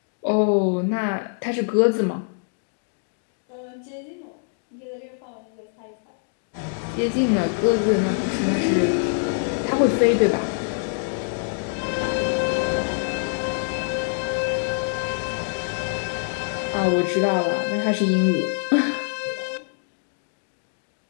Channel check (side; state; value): right; silent; digital silence